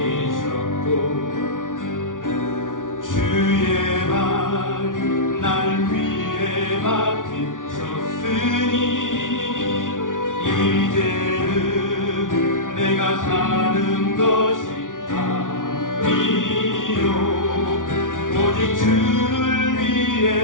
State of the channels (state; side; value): late; right; 0.88 ms